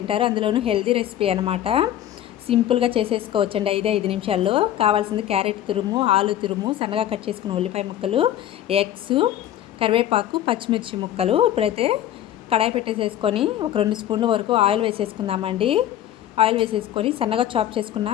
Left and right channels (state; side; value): quieter; right; 11.9 dB